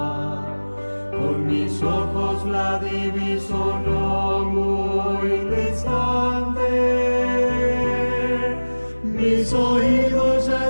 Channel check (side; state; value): both; inverted; correlation -1.00